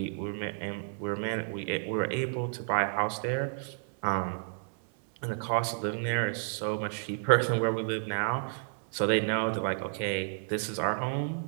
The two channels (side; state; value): left; silent; 57 dB below the other